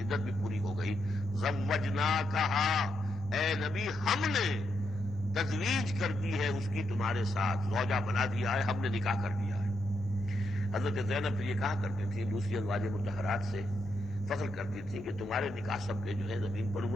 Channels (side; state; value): both; normal; correlation 0.81